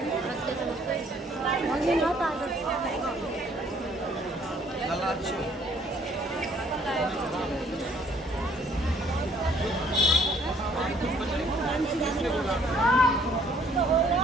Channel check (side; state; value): both; normal; correlation 0.62